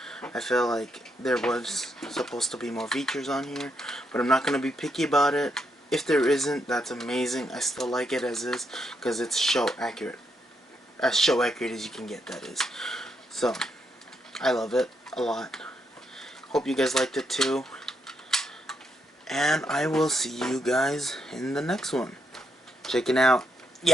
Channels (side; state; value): both; normal; correlation 0.78